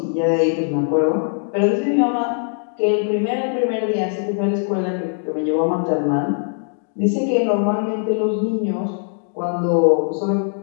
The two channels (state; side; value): silent; right; digital silence